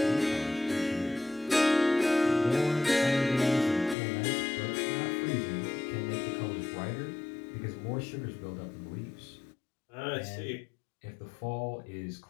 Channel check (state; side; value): drops out; right; at 4.0 s